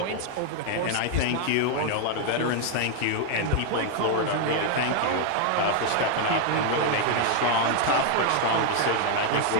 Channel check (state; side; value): different; both; correlation 0.00